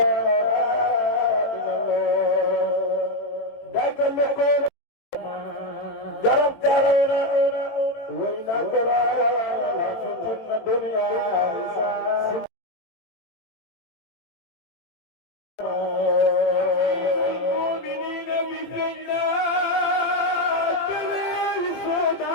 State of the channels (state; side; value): late; right; 17 ms